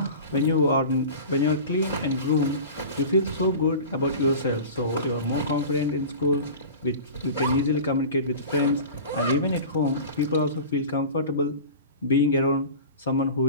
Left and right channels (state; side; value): inverted; both; correlation -0.35